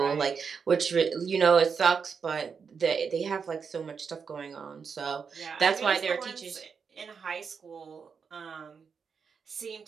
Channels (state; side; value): quieter; left; 6.0 dB